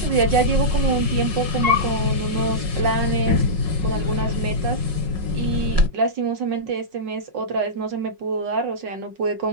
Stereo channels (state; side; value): late; left; 5.5 ms